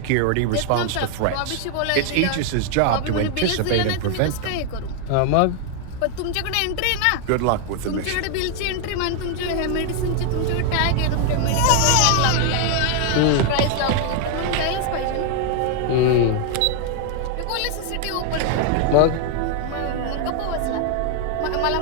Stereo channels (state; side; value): different; both; correlation 0.00